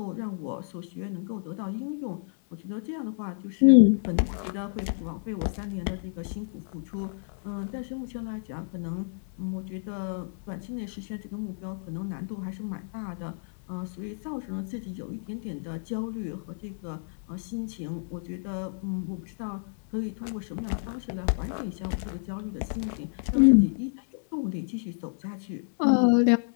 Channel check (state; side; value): silent; right; 58 dB below the other